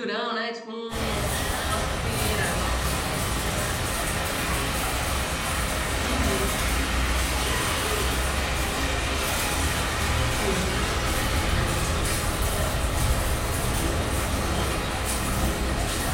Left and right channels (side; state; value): both; identical; correlation 1.00